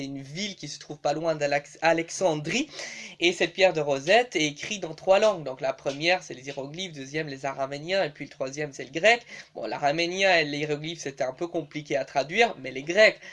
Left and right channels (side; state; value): both; identical; correlation 1.00